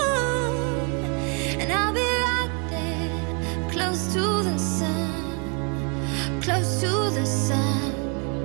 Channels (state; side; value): quieter; left; 36.1 dB